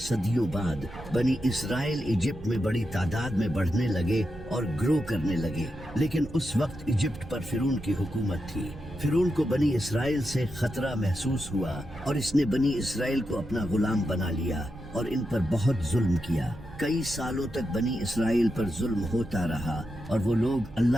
بعد بنی اسرائیل ایجپٹ میں بڑی تعداد میں بڑھنے لگے اور گرو کرنے لگے، لیکن اس وقت ایجپٹ پر فرعون کی حکومت تھی۔ فرعون کو بنی اسرائیل سے خطرہ محسوس ہوا اور اس نے بنی اسرائیل کو اپنا غلام بنا لیا اور ان پر بہت ظلم کیا۔ کئی سالوں تک بنی اسرائیل پر ظلم ہوتا رہا اور وہ لوگ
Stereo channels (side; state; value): right; noise; rumble, 15 dB below the sound